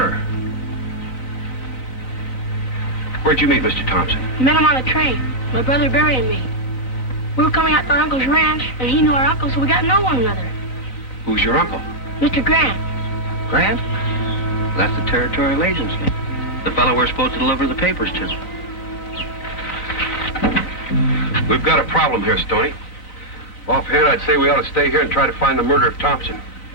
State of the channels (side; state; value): right; late; 11 ms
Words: Where'd you meet Mr. Thompson? Met him on the train. My brother Barry and me. We were coming out to our uncle's ranch, and he knew our uncle, so we got to know one another. Who's your uncle? Mr. Grant. Grant? That's the territorial agency. The fellow we're supposed to deliver the papers to. We've got a problem here, Stoney. Offhand, I'd say we ought to stay here and try to find the murder of Thompson.